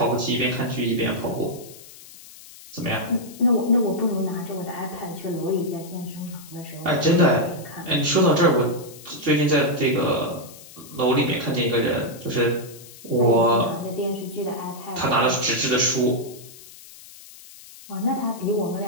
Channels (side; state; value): left; noise; hiss, 19 dB below the sound